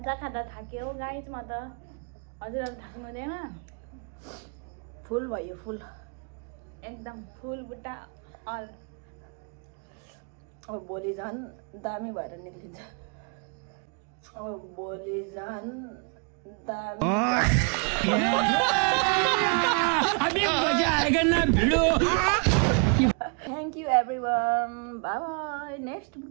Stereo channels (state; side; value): quieter; left; 38.1 dB